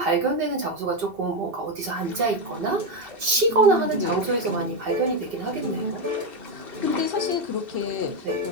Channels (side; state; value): left; late; 2.7 ms